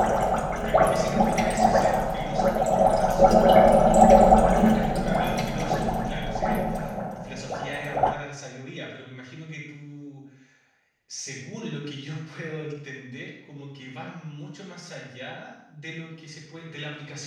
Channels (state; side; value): identical; both; correlation 1.00